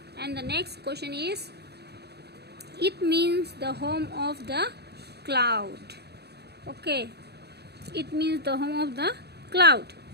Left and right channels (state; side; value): late; left; 0.48 ms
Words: And the next question is, it means the home of the cloud. Okay, it means the home of the cloud.